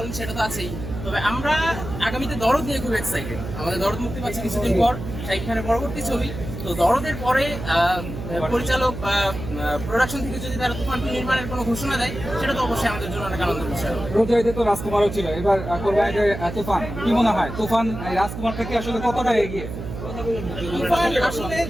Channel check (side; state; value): right; noise; hum, 8 dB below the sound